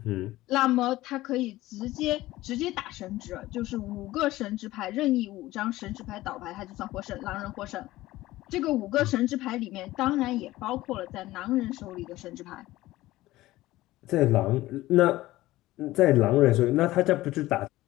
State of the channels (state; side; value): quieter; right; 17.0 dB